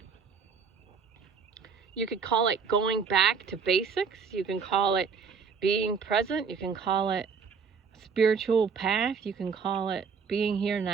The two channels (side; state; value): left; quieter; 5.8 dB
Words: You could call it going back to basics. You can call it being present. You can call it a spiritual path. You can call it being here